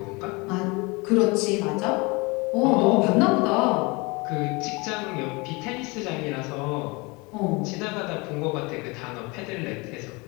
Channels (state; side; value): quieter; right; 26.6 dB